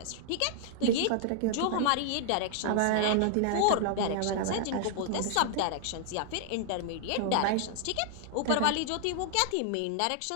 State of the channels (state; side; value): different; both; correlation 0.00